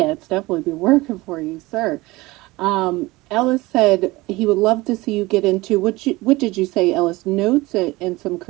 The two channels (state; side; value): quieter; left; 20.9 dB